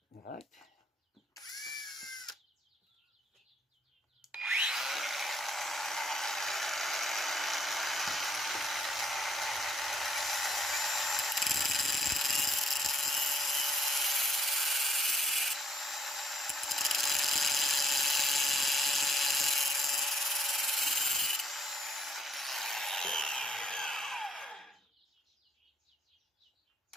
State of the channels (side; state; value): both; normal; correlation 0.69